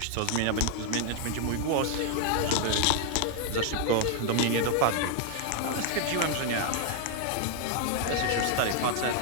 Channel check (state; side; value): different; both; correlation 0.00